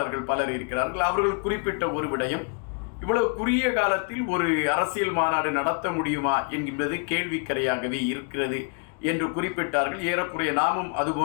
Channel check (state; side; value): quieter; right; 39.2 dB